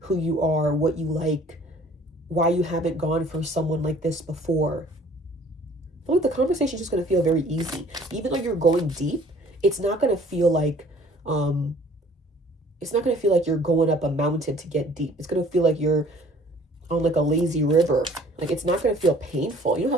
who you are, what you like, why you haven't gone for someone like this before. I feel like the conversation is just gonna feel very easy. Even though you're going deep, it's not gonna feel like you're going up a mountain to get deep. It's gonna feel like you're on like a lazy river. Like it's not gonna feel painful. You know how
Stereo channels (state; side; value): normal; both; correlation 0.54